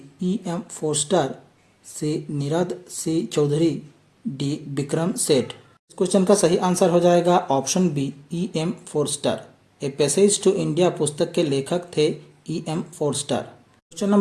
E.M. Forster, C Nirad C Chaudhuri, D Vikram Seth. इस क्वेश्चन का सही आंसर हो जाएगा option B E.M. Forster. A passage to India पुस्तक के लेखक थे E.M. Forster. Question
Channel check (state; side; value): identical; both; correlation 1.00